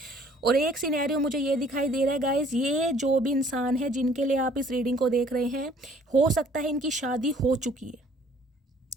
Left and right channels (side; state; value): both; normal; correlation 0.57